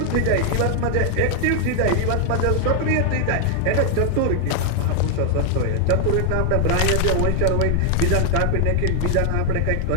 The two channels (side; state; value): both; different; correlation 0.00